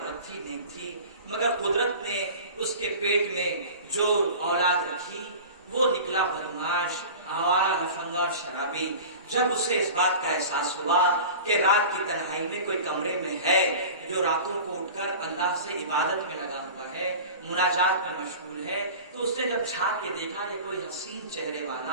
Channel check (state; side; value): inverted; both; correlation -0.37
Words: تھی, نیک تھی, مگر قدرت نے اس کے پیٹ میں جو اولاد رکھی وہ نکلا بدماش, آوارہ, لفنگا اور شرابی. جب اسے اس بات کا احساس ہوا کہ رات کی تنہائی میں کوئی کمرے میں ہے جو راتوں کو اٹھ کر اللہ سے عبادت میں لگا ہوا ہے, مناجات میں مشغول ہے, تو اس نے جب جھانک کے دیکھا کہ کوئی حسین چہرے